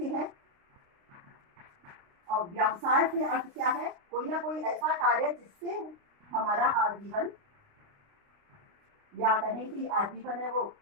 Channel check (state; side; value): late; left; 29 ms